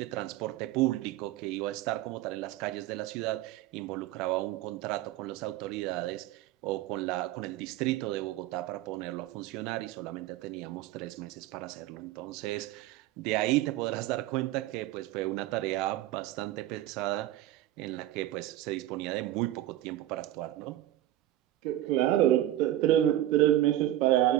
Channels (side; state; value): left; quieter; 14.1 dB